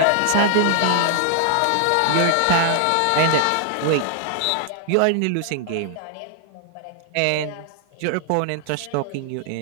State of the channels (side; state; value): both; different; correlation 0.00